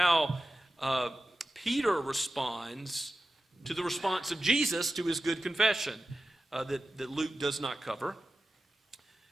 Peter responds to the response of Jesus to his good confession that Luke does not cover.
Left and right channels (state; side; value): normal; both; correlation 0.93